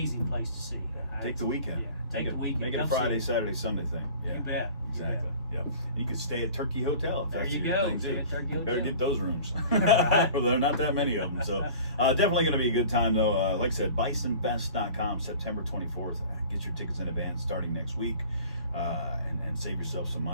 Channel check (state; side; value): inverted; both; correlation -0.43